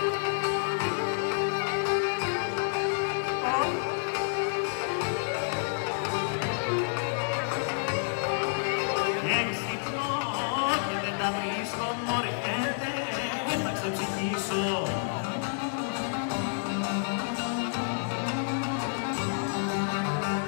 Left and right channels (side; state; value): right; silent; digital silence